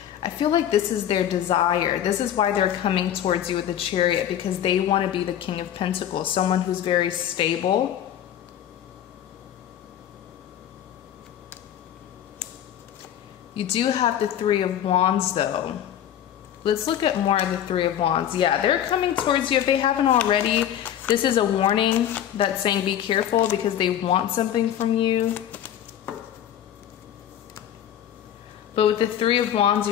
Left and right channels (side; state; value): right; quieter; 10.6 dB